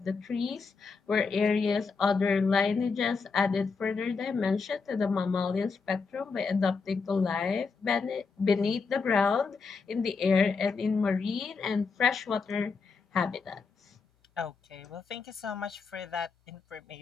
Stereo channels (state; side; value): quieter; right; 4.8 dB